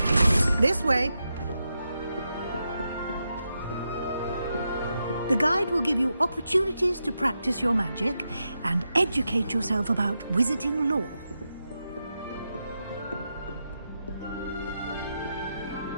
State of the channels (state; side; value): inverted; both; correlation -0.87